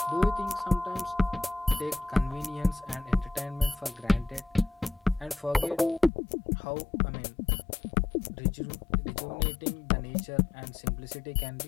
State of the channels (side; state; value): right; drops out; at 6.1 s